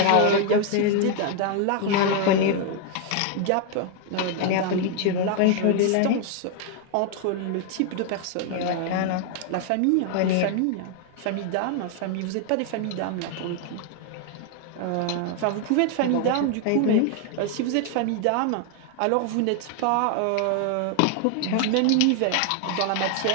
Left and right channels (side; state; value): both; different; correlation 0.00